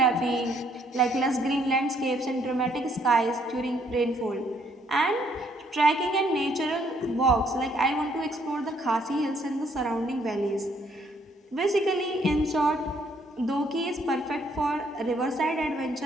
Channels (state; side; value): normal; both; correlation 0.68